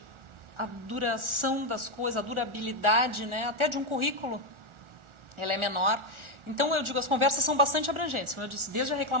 a duração das coisas, a durabilidade, né, até de um currículo, ela é menor. Então, eu digo, as conversas são bastante abrangentes, como eu disse, desde a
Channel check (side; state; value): left; late; 1.4 ms